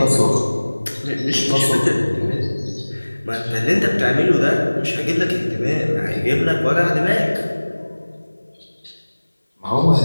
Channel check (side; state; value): both; inverted; correlation -1.00